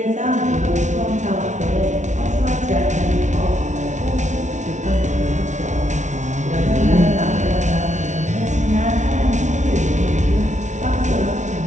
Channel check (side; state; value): left; late; 0.35 ms